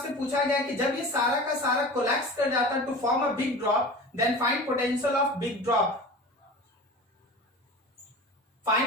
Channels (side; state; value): both; normal; correlation 0.35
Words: पूछा गया कि जब ये सारा का सारा कोलैप्स कर जाता है to form a big drop, then find potential of big drop.